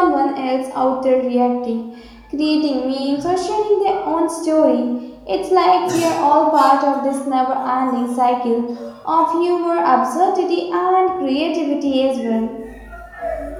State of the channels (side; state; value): both; identical; correlation 1.00